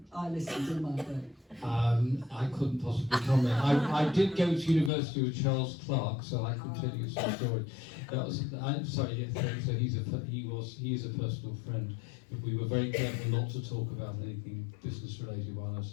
I listened in my day. I couldn't possibly comment. I did go to university with Charles Clarke, so I can tell you some story. I'm sorry. Yes, so he is a personal friend, but we were very careful not to talk about anything business related while I was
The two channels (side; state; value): right; drops out; at 4.9 s